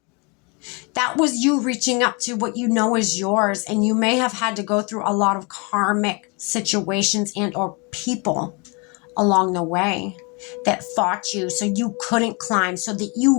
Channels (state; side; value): quieter; right; 30.9 dB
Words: That was you reaching up to what you know is yours. And you may have had to go through a lot of karmic situations and or people along the way that fought you so you couldn't climb, so that